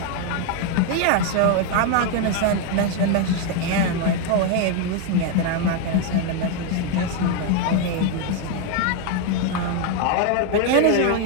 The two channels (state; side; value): different; both; correlation 0.01